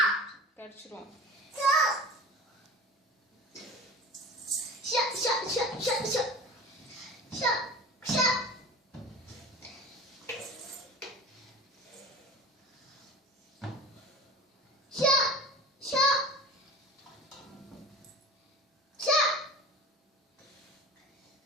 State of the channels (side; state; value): both; normal; correlation 0.35